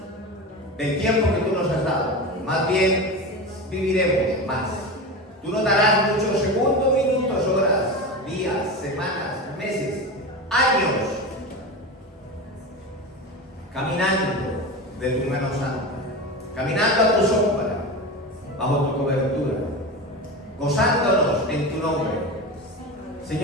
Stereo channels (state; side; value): normal; both; correlation 0.25